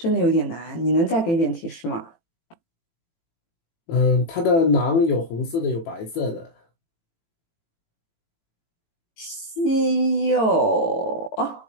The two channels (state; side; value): late; right; 18 ms